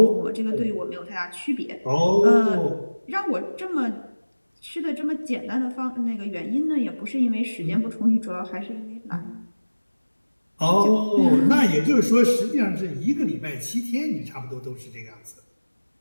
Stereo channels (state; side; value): inverted; both; correlation -1.00